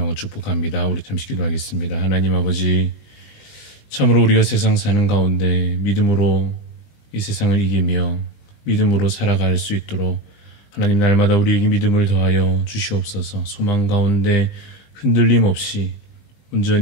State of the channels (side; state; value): right; late; 20 ms